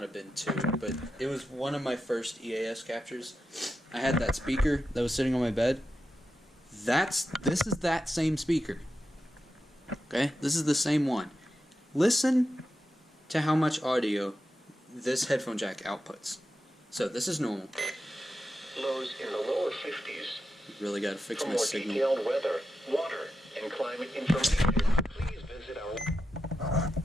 have been 2, but it was one of my first EAS captures. I had that speaker that was sitting on my bed. This is that same speaker. Okay? This is the same one. Listen to how much audio this headphone jack outputs. So this is normal. Lows in the lower 50s. Really got to fix For my more signal. detailed weather, water, and climate information, please visit our...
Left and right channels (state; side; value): normal; both; correlation 0.89